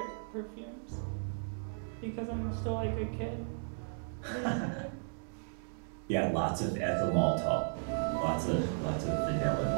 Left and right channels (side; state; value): left; silent; digital silence